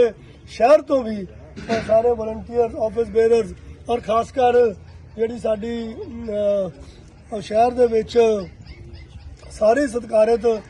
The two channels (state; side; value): identical; both; correlation 1.00